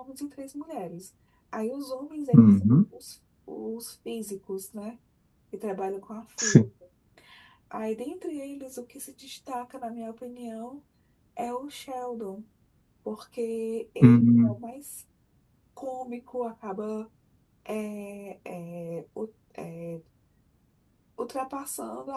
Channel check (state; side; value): identical; both; correlation 1.00